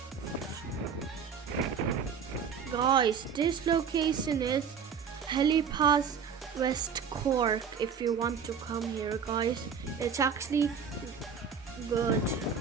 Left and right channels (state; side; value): quieter; left; 6.6 dB